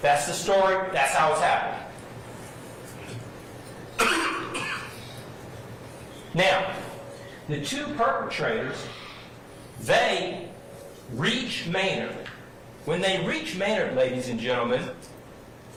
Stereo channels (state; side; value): identical; both; correlation 1.00